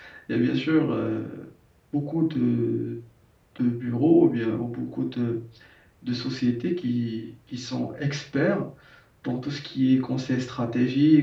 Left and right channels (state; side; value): identical; both; correlation 1.00